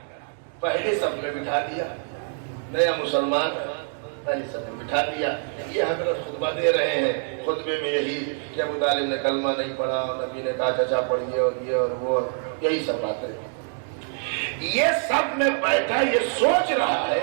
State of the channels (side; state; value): left; silent; 61 dB below the other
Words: پہلے صف میں بٹھا دیا، نیا مسلمان پہلے صف میں بٹھا دیا۔ یہ حضرت خطبہ دے رہے ہیں، خطبے میں یہی کہ ابو طالب نے کلمہ نہیں پڑھا، نبی نے کہا چچا پڑھیے، اور یہ اور وہ، یہی سب باتیں۔ یہ سب میں بیٹھا یہ سوچ رہا